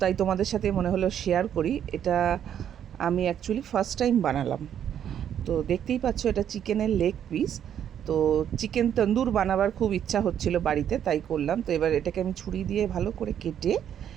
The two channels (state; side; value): quieter; left; 9.6 dB